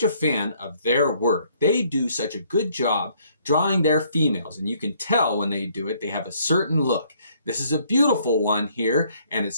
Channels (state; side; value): inverted; both; correlation -0.64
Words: a fan of their work. They do such a good job drawing their females, and you can tell when they do it, they have a certain look. This is a beautiful one here, and it